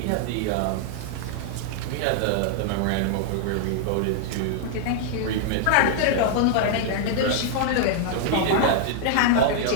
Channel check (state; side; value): different; both; correlation -0.01